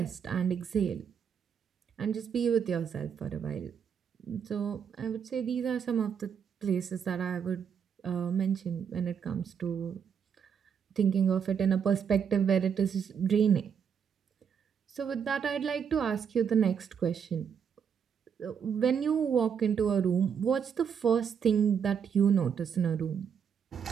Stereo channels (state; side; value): quieter; left; 7.3 dB